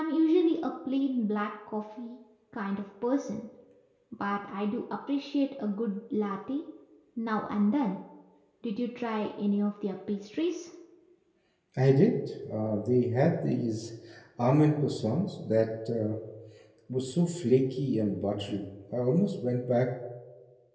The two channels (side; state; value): both; identical; correlation 1.00